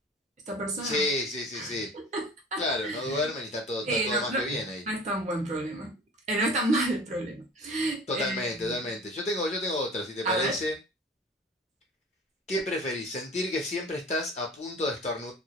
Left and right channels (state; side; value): normal; both; correlation 0.42